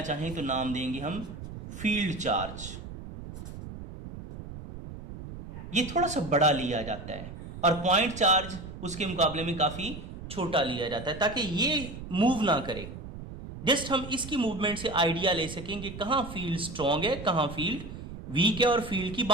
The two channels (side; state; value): right; noise; rumble, 11 dB below the sound